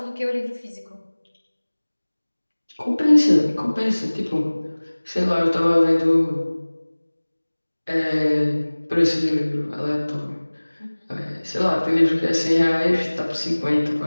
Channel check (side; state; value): both; inverted; correlation -1.00